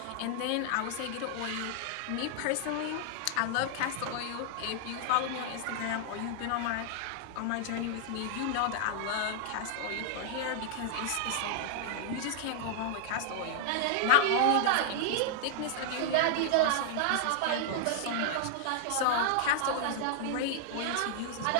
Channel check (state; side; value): different; both; correlation 0.00